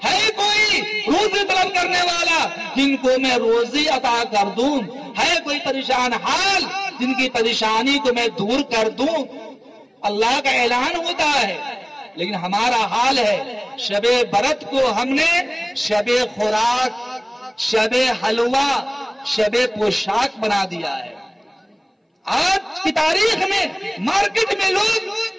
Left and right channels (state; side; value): identical; both; correlation 1.00